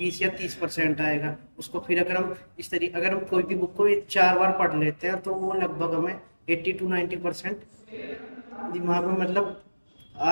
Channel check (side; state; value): both; inverted; correlation -1.00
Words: या 30% आएगा उसको। फिर अगर हम इस तरीके अगर हम कोई भी बुक को 4 बार पढ़ लेते हैं तो वो लगभग हमें 80 to 90% दिमाग में मतलब